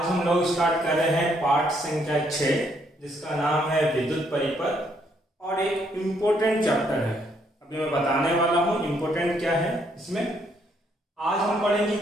हम लोग स्टार्ट कर रहे हैं पाठ संख्या 6 जिसका नाम है विद्युत परिपथ और एक इम्पोर्टेंट चैप्टर है। अभी मैं बताने वाला हूँ इम्पोर्टेंट क्या है इसमें। आज हम पढ़ेंगे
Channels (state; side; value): normal; both; correlation 0.71